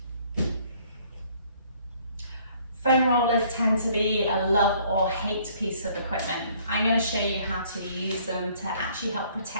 Foam rollers tend to be a love or hate piece of equipment. I'm going to show you how to use them to actually help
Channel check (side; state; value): both; inverted; correlation -0.60